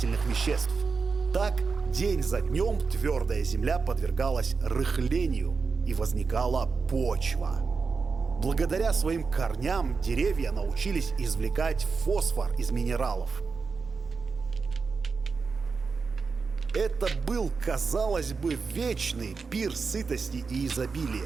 веществ. Так, день за днем твердая земля подвергалась рыхлению и возникала почва. Благодаря своим корням деревья научились извлекать фосфор из минералов. Это был, казалось бы, вечный пир сытости и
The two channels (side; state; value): left; quieter; 4.8 dB